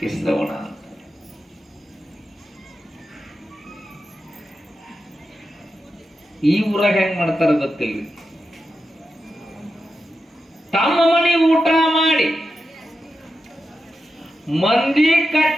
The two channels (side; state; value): both; normal; correlation 0.89